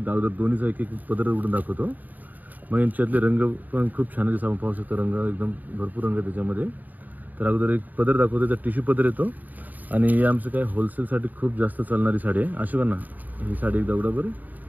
अगोदर दोन्हीचा एक एक पदर उघडून दाखवतो। मग यांच्यातले रंग पण खूप छान आहे, जसं आपण पाहू शकतो रंग एकदम भरपूर रंग आहे त्याच्यामध्ये। तर अगोदर एक पदर दाखवतो, तर टिश्यू पदर येतो आणि हे आमचं काय होलसेलसाठी खूप जास्त चालणारी साडी आहे। अशी ना ही साडी एकदा उघडा बरं।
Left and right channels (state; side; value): late; left; 0.083 ms